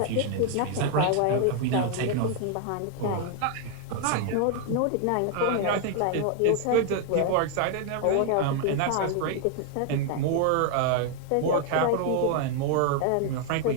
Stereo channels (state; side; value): different; both; correlation 0.00